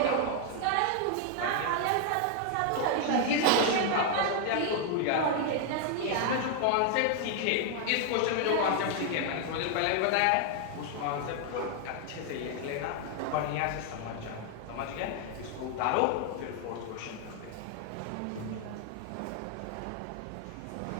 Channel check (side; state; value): both; different; correlation 0.00